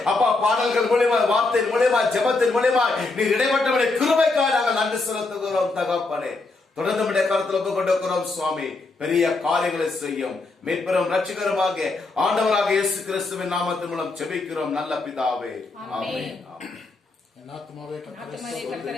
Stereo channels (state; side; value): quieter; right; 3.4 dB